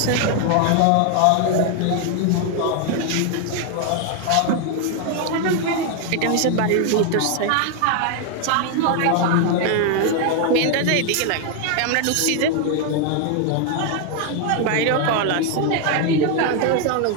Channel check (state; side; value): different; both; correlation 0.01